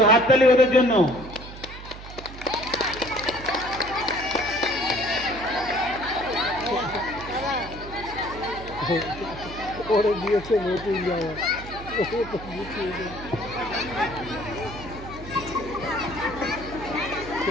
হাততালি ওদের জন্য। ওরে দিয়েছে নতুন জামা।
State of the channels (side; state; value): right; noise; hum, 13 dB below the sound